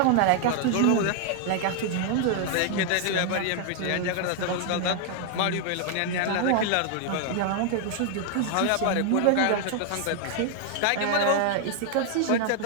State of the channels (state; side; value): different; both; correlation 0.00